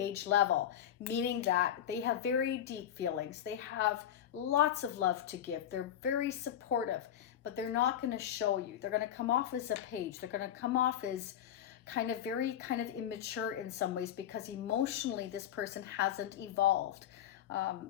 level, meaning that they have very deep feelings. They have lots of love to give. They're very supportive, but they're not going to show you. They're going to come off as a page. They're going to come off as very immature in some ways, because emotionally this person hasn't evolved.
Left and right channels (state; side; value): quieter; right; 10.5 dB